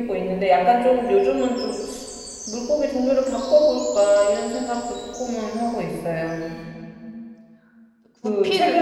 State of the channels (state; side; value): identical; both; correlation 1.00